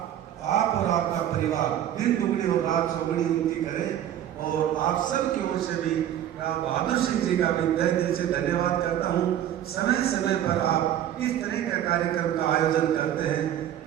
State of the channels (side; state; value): left; quieter; 11.1 dB